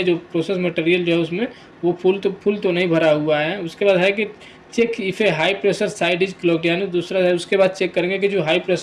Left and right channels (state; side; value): identical; both; correlation 1.00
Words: जो प्रोसेस मटेरियल जो है उसमें वो फुल तो नहीं भरा हुआ है। उसके बाद है कि check if a high pressure side is closed, यानी दूसरा है उसके बाद चेक करेंगे कि जो हाई